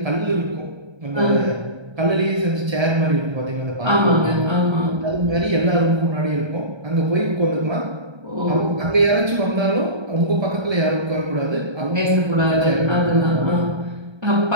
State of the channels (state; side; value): late; left; 1.3 ms